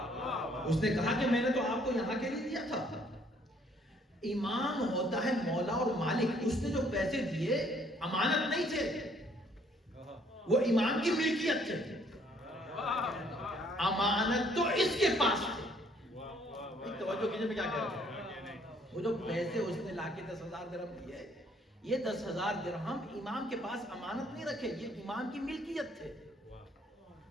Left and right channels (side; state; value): both; normal; correlation 0.63